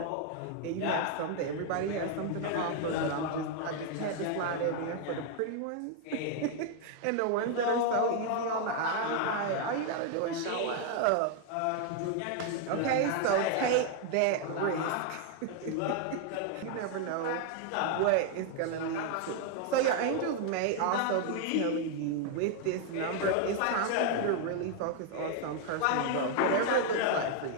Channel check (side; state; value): both; different; correlation 0.00